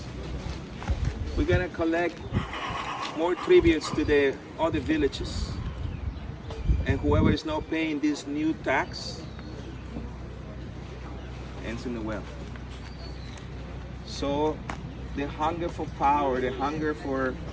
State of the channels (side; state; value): both; identical; correlation 1.00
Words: we're gonna collect more tributes to the other villages. And whoever is not paying this new tax ends in the well. So the hunger for power, the hunger for